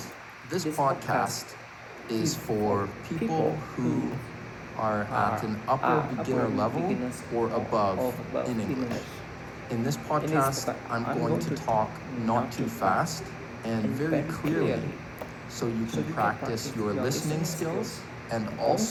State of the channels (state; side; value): identical; both; correlation 1.00